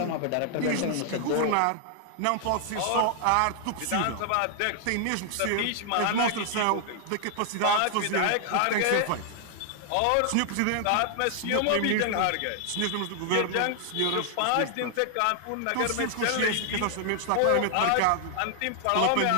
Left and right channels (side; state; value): both; different; correlation 0.00